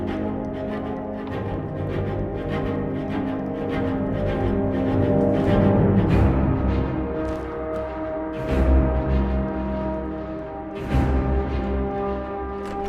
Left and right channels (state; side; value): identical; both; correlation 1.00